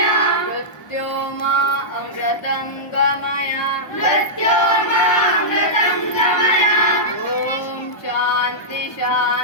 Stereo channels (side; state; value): right; late; 1.1 ms